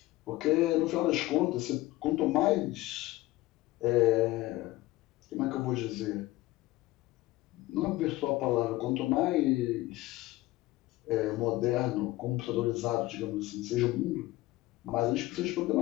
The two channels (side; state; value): right; quieter; 18.1 dB